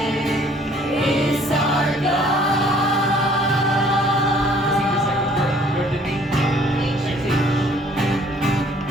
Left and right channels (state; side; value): normal; both; correlation 0.58